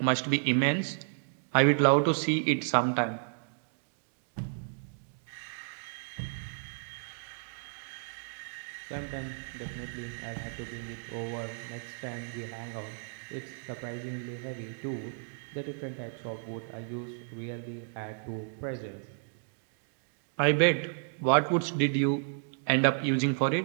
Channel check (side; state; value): left; silent; digital silence